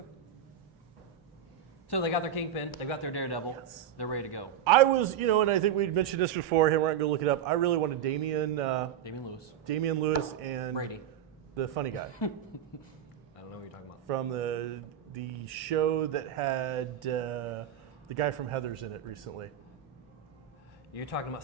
So they got their Kingpin. They got their Daredevil. Yes. They're ready to go. I was, and I think we'd mentioned this before. Hey, we're not going to look it up. I really wanted Damian Lewis and Brady. the funny guy I don't know what you're talking about. from the show that had the guy from Heathers in it recently. You're talking about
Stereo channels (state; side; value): quieter; left; 9.3 dB